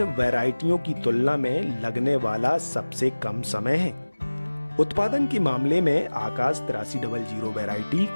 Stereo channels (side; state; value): both; inverted; correlation -1.00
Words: वैरायटियों की तुलना में लगने वाला सबसे कम समय है। उत्पादन के मामले में आकाश 8300 वैरायटी